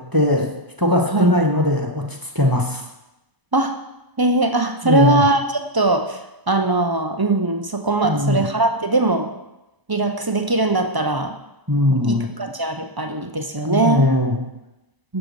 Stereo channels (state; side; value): late; left; 1.0 ms